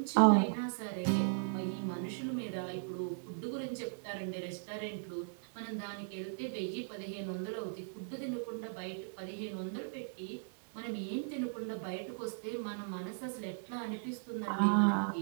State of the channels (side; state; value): left; silent; 53 dB below the other